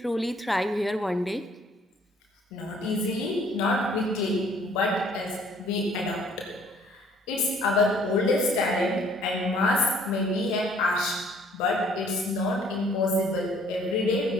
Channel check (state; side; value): normal; both; correlation 0.59